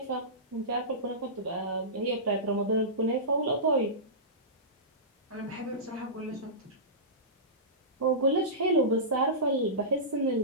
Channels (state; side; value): normal; both; correlation -0.19